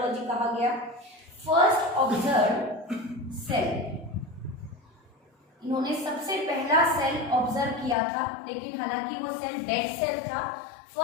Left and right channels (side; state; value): right; drops out; at 8.0 s